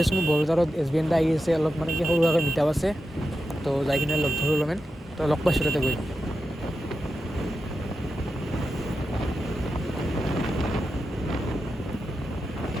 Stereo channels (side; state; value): both; normal; correlation 0.90